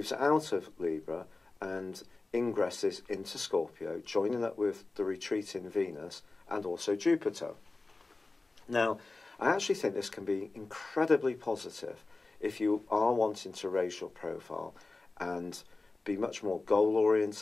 out of Libra and ingresses into Scorpio, joining up with the retreating Venus and also Jupiter. Now, I actually think this can be incredibly positive if you are wanting to raise your profile and be much more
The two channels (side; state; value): right; quieter; 3.4 dB